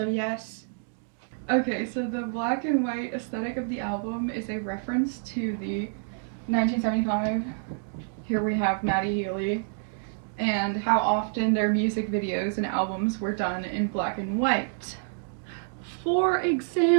yes. Okay, so the black and white aesthetic of the album is a reference to the 1975. Here we have Matty Healy, and how often their music videos and albums were done in black and white. For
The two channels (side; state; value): left; silent; digital silence